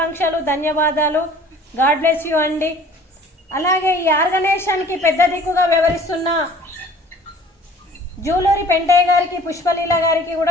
ధన్యవాదాలు. గాడ్ బ్లెస్ యూ అండి. అలాగే ఈ ఆర్గనైజేషన్కి పెద్ద దిక్కుగా వ్యవహరిస్తున్న జూలూరి పెంటయ్య గారికి, పుష్పలీల గారికి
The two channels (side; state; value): both; normal; correlation 0.49